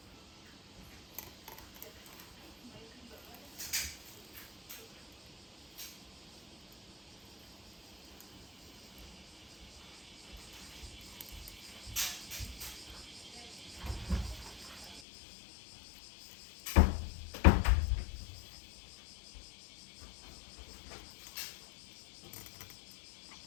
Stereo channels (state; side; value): drops out; right; at 15.0 s